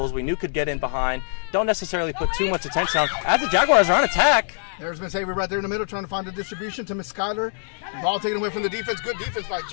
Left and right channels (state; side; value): silent; right; digital silence